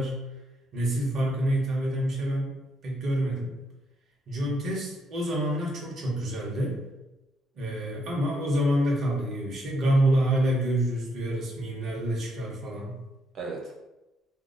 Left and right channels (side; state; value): both; normal; correlation 0.76